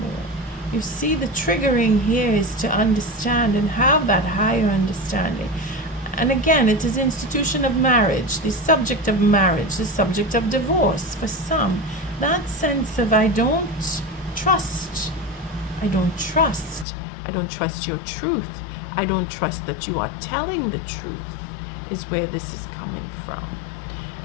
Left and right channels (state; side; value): drops out; right; at 16.9 s